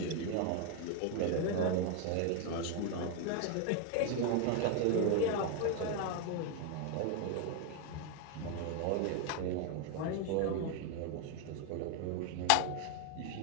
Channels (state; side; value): different; both; correlation 0.01